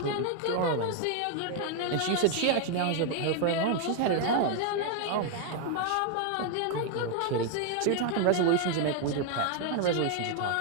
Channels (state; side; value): different; both; correlation 0.00